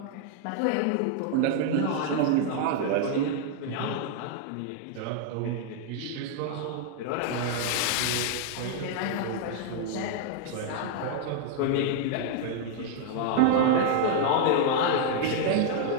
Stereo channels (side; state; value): both; different; correlation 0.00